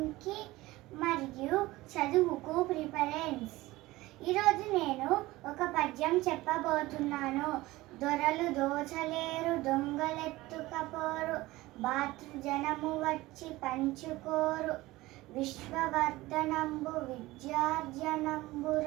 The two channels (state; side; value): quieter; left; 18.9 dB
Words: మరియు చదువుకు ప్రిఫరెన్స్. ఈరోజు నేను ఒక పద్యం చెప్పబోతున్నాను. దొరలు దోచలేరు, దొంగలెత్తుకపోరు, భాతృజనము వచ్చి పంచుకోరు, విశ్వవర్ధనంబు